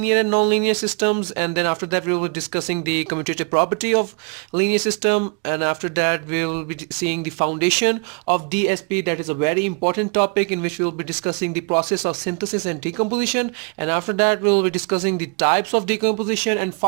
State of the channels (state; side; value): quieter; left; 37.1 dB